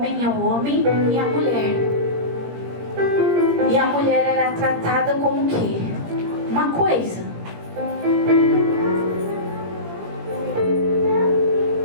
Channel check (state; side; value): late; left; 17 ms